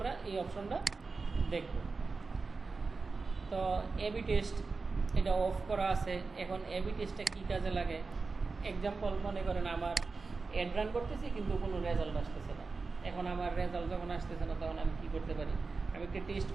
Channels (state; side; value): quieter; left; 4.2 dB